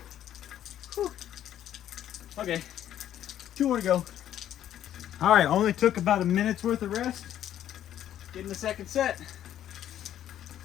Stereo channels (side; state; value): right; quieter; 11.2 dB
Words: Okay, 2 more to go. All right, only took about a minute's worth of rest. Getting the second set.